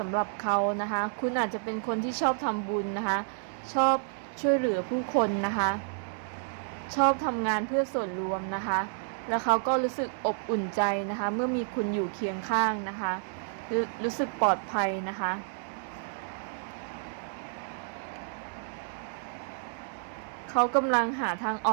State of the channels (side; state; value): left; silent; digital silence